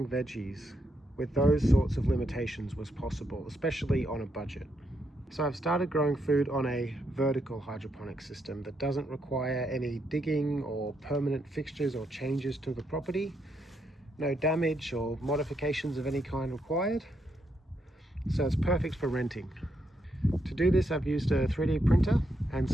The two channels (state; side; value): normal; both; correlation 0.79